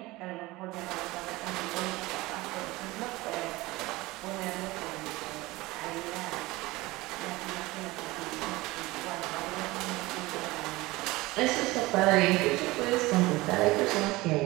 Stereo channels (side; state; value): left; quieter; 20.4 dB